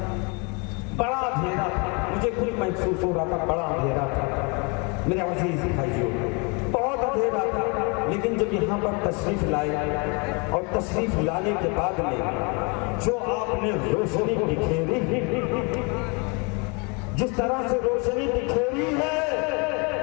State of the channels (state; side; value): quieter; right; 31.8 dB